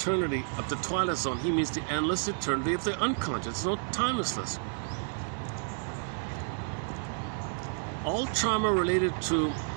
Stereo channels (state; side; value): silent; left; 57 dB below the other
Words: of the Twilight Zone, he means the endless eternity of the unconscious. It's no timelessness. All trauma related to